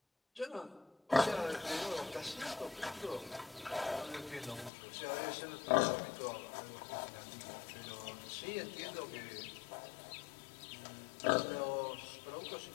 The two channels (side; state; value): right; drops out; at 4.7 s